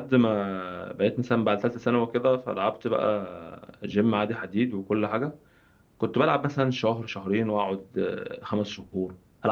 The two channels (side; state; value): both; identical; correlation 1.00